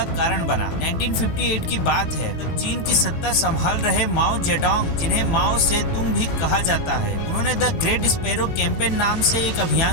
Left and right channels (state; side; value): late; right; 18 ms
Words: कारण बना। 1958 की बात है, तब चीन की सत्ता संभाल रहे माओ जेडोंग, जिन्हें माओ सेतुंग भी कहा जाता है, उन्होंने द ग्रेट स्पैरो कैंपेन नाम से एक